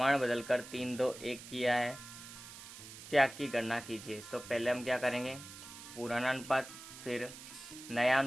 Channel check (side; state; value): right; noise; hiss, 14 dB below the sound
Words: बदलकर 3:2:1 किया है। त्याग की गणना कीजिए। तो पहले हम क्या करेंगे, पुराना अनुपात, फिर नया